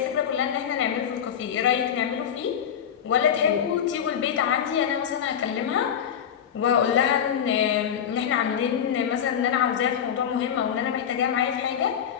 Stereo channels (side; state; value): right; quieter; 8.6 dB